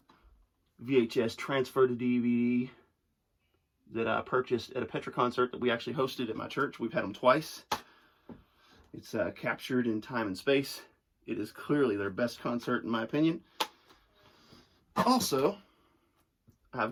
VHS transfer to DVD that I purchased at a Petra concert that we actually hosted at my church. We've had them twice. It's captured in time and space. It is clearly their best concert in my opinion. Also, I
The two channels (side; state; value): both; identical; correlation 1.00